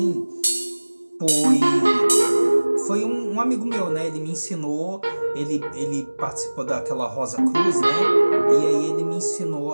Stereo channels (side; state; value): both; inverted; correlation -1.00